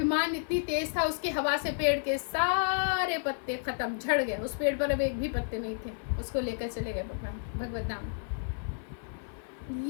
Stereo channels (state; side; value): silent; right; 57 dB below the other